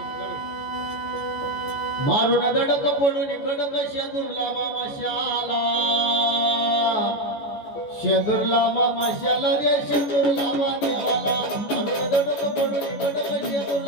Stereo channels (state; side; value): late; right; 14 ms